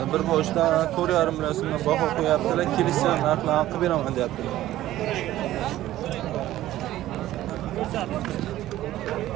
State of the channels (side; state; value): left; quieter; 14.4 dB